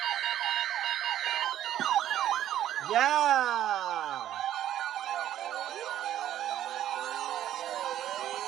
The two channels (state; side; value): quieter; left; 11.9 dB